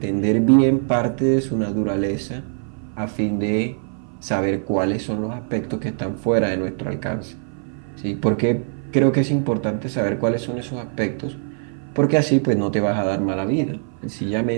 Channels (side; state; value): left; silent; 56 dB below the other